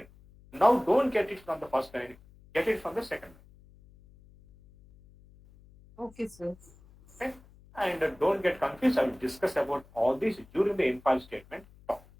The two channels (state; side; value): noise; left; hum, 25 dB below the sound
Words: Now don't get it from the first line, get it from the second line. Okay, sir. Okay? And don't get confused. I will discuss about all these during the in-file statement talk.